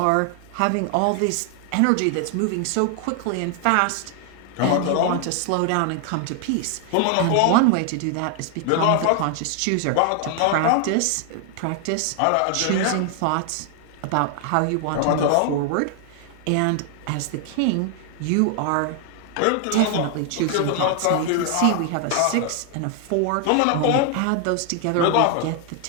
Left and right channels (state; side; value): different; both; correlation 0.00